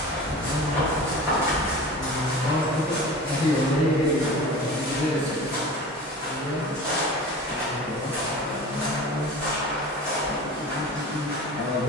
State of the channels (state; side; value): normal; both; correlation 0.36